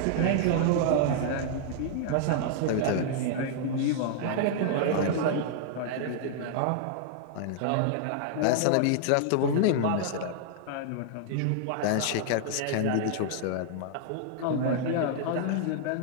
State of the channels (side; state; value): both; different; correlation -0.01